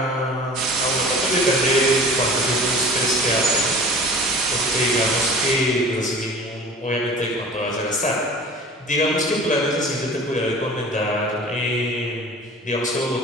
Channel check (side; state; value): both; normal; correlation 0.42